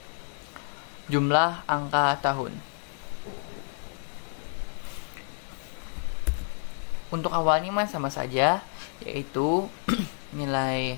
jumlah angka tahun. Untuk awalnya mah sama saja, yaitu nilai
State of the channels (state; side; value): silent; right; digital silence